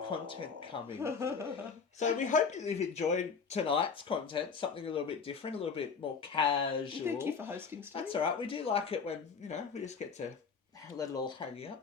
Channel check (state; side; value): quieter; right; 5.6 dB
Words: coming. So we hope that you've enjoyed tonight's content, something a little bit different, a little bit more casual. Thank you for hosting, Steve. That's all right. We do like it when, we just get to let it all hang